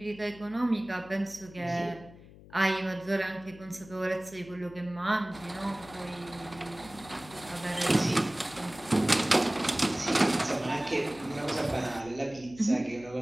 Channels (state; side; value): noise; left; hum, 20 dB below the sound